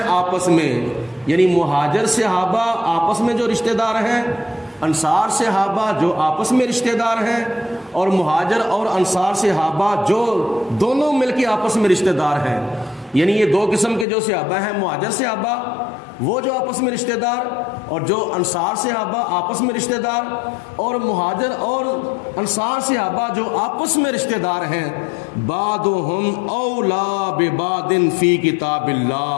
آپس میں، یعنی مہاجر صحابہ آپس میں جو رشتہ دار ہیں، انصار صحابہ جو آپس میں رشتہ دار ہیں، اور مہاجر اور انصار صحابہ جو دونوں مل کے آپس میں رشتہ دار ہیں، یعنی یہ دو قسم کے جو صحابہ ہیں، مہاجر صحابہ وہ جو آپس میں رشتہ دار، اور جو انصار صحابہ آپس میں رشتہ دار، اور مہاجر اور انصار صحابہ جو آپس میں رشتہ دار ہیں، بعضهم اولا ببعض فی کتاب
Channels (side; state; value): right; drops out; at 14.1 s